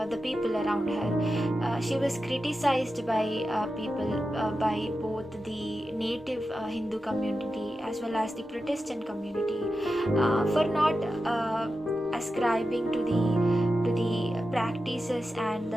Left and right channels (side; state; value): both; normal; correlation 0.91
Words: the people around her. She was criticized by people, by both the native Hindu community as well as the Protestant community, for not ascribing to the practices and